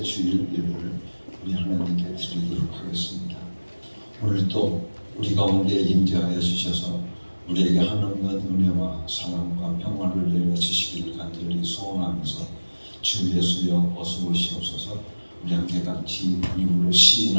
주일 예배를 우리 하나님께 드리도록 하겠습니다. 오늘도 우리 가운데 임재하여 주셔서 우리에게 하나님의 은혜와 사랑과 평안을 내려주시기를 간절히 소원하면서 주 예수여 어서 오시옵소서. 우리 함께 같이 입으로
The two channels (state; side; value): inverted; both; correlation -1.00